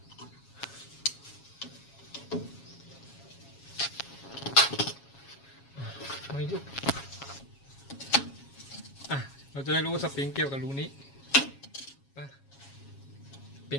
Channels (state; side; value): late; right; 7.3 ms